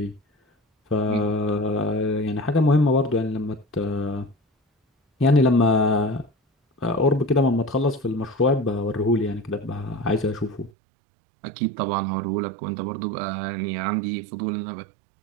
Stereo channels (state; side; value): drops out; left; at 10.7 s